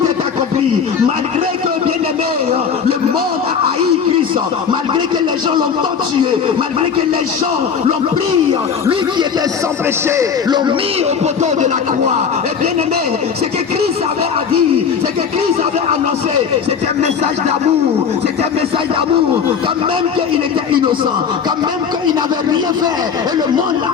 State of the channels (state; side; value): quieter; right; 6.6 dB